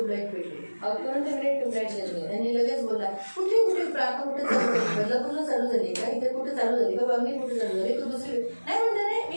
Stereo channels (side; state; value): both; inverted; correlation -1.00